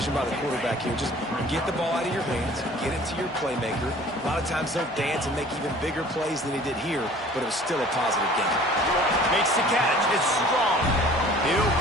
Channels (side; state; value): both; normal; correlation 0.49